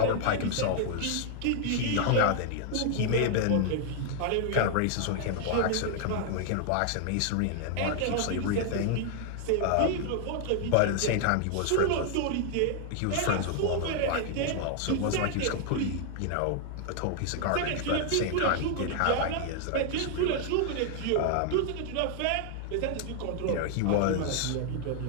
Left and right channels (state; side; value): different; both; correlation 0.00